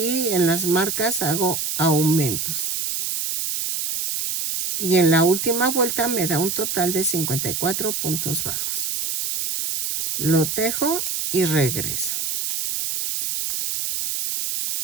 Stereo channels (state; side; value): noise; right; hiss, 2 dB below the sound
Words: en las marcas hago aumentos. Y en la última vuelta me da un total de 54 puntos bajos. Lo tejo y regreso.